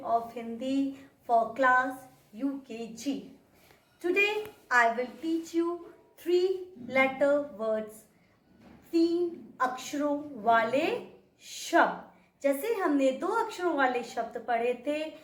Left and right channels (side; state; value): both; identical; correlation 1.00